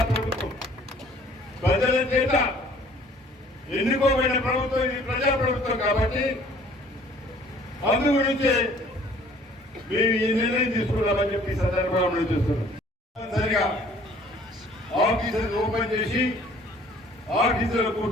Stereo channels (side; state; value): both; normal; correlation 0.55